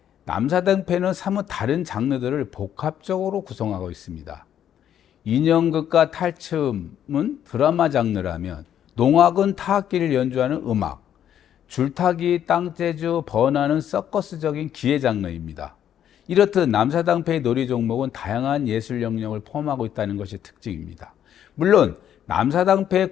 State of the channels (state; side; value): quieter; right; 10.0 dB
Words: 남사당패는 사뭇 다른 장르들을 복합적으로 구성하고 있습니다. 인형극과 탈춤은 드라마 장르라면 농악은 타악기를 연주하는 음악, 줄타기, 땅재주, 번화는 서커스적인 기회 장르입니다. 이렇듯 남사당패의 놀이 종목은 다양한 예술 영역을 포함하고 있다는 것이 특징입니다. 물론